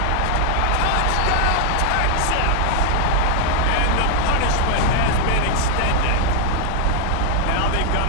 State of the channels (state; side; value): different; both; correlation 0.00